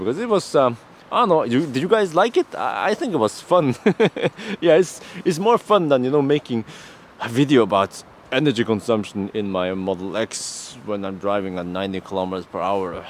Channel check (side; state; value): both; identical; correlation 1.00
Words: it was I don't know, did you guys like it? I think it was fun. Yeah, it's more fun than, you know, making a video about energy consumption in my Model X when I'm driving at 90 kilometers per hour.